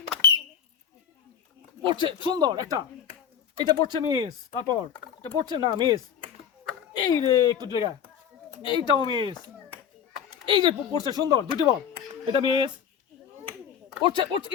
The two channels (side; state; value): right; quieter; 8.1 dB